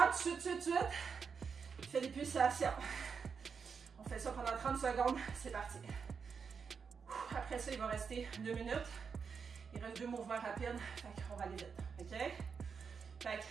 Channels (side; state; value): left; quieter; 6.0 dB